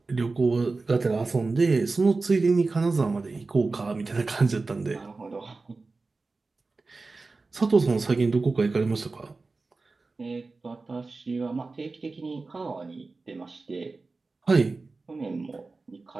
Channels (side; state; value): left; quieter; 3.7 dB